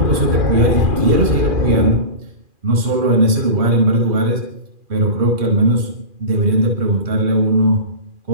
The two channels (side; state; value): left; late; 2.4 ms